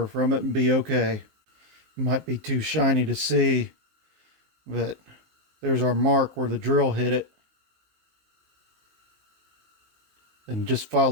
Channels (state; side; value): late; left; 19 ms